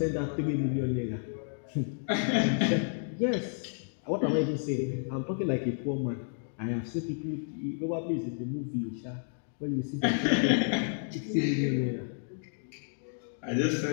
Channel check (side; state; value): right; silent; digital silence